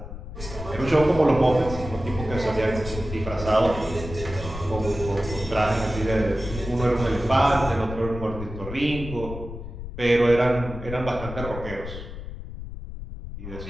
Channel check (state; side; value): noise; left; rumble, 10 dB below the sound